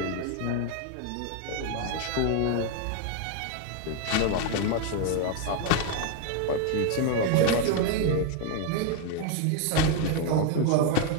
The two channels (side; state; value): both; different; correlation 0.01